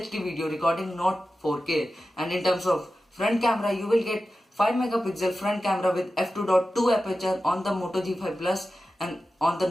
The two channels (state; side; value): normal; both; correlation 0.93